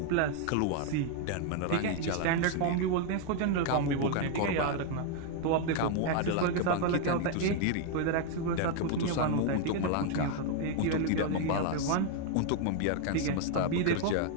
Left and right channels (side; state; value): both; different; correlation 0.00